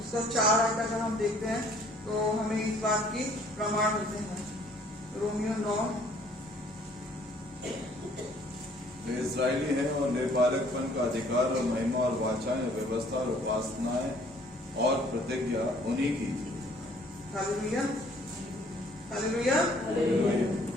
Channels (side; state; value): both; normal; correlation 0.59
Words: उसका 4 आयत अगर हम देखते हैं तो हमें इस बात की प्रमाण मिलते हैं। रोमियो 9 वे इजरायली हैं और निर्पालकपन का अधिकार और महिमा और वाचाएं और व्यवस्था और उपासनाएं और प्रतिज्ञा उन्हीं की थी। Hallelujah, hallelujah.